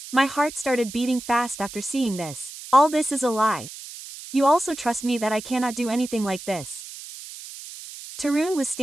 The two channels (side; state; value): right; noise; hiss, 13 dB below the sound